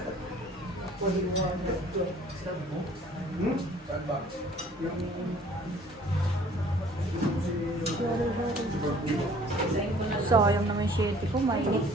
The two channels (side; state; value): both; normal; correlation 0.54